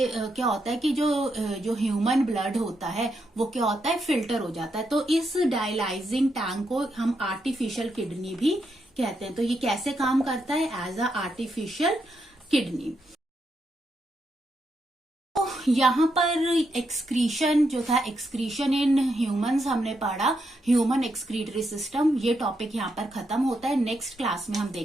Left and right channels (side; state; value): both; normal; correlation 0.81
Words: क्या होता है कि जो ह्यूमन ब्लड होता है वो क्या होता है? फिल्टर हो जाता है। तो इस डायलाइजिंग टैंक को हम आर्टिफिशियल किडनी भी कहते हैं। तो ये कैसे काम करता है? As a artificial kidney. यहाँ पर एक्सक्रीशन जो था, एक्सक्रीशन इन ह्यूमंस हमने पढ़ा, ह्यूमन एक्सक्रीटरी सिस्टम, ये टॉपिक यहाँ पर खत्म होता है। नेक्स्ट क्लास में हम